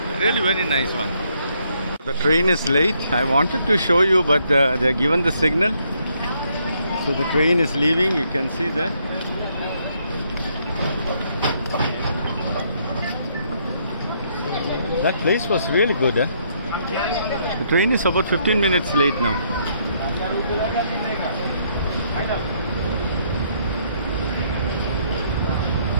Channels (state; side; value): inverted; both; correlation -0.71